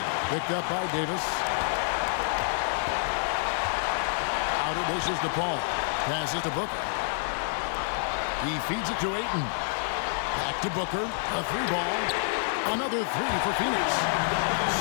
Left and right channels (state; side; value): silent; right; 59 dB below the other